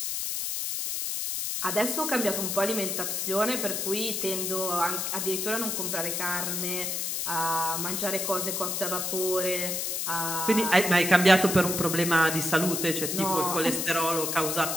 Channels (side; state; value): left; noise; hiss, 1 dB below the sound